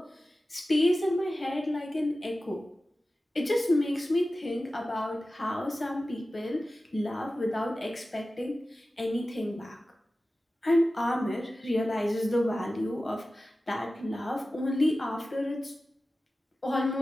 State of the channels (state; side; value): normal; both; correlation 0.95